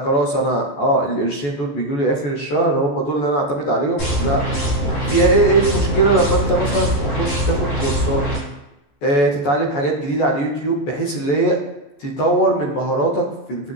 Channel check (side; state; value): right; late; 14 ms